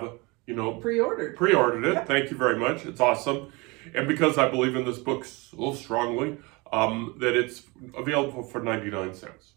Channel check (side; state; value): left; quieter; 26.0 dB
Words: pre-ordered it. Yep. Thank you very much. It's awesome. And because I believe in this book so strongly, that it's available for 99 cents.